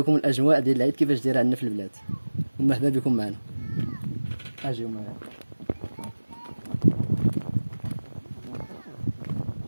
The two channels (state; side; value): inverted; both; correlation -1.00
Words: الاجواء ديال العيد كيفاش دايره عندنا في البلاد. ومرحبا بكم معنا، اجيو معنا.